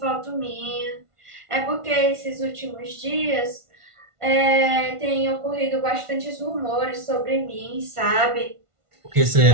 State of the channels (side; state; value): left; late; 1.5 ms